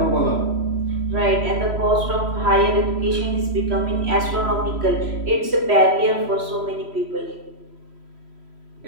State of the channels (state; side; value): late; left; 3.1 ms